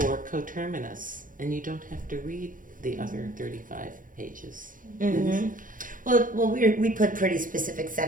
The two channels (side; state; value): left; late; 0.39 ms